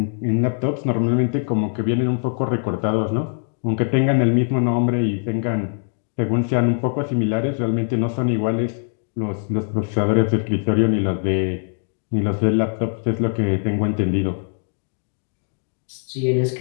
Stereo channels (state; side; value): silent; right; digital silence